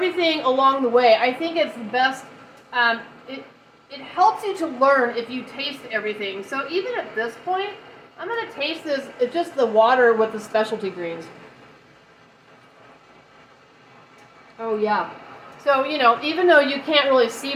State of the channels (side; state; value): both; identical; correlation 1.00